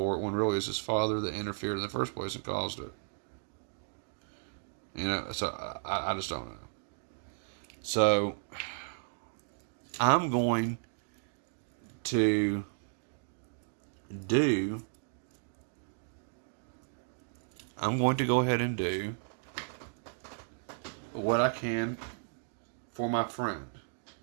it, when really it's his father that interfered in the first place and caused it. So I just don't know. So I'm going to go ahead and do what I can for my friend.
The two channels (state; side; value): silent; left; digital silence